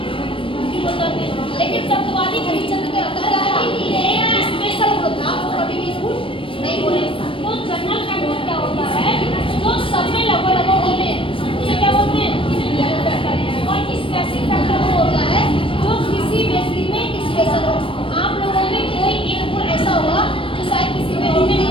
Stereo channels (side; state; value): right; late; 0.25 ms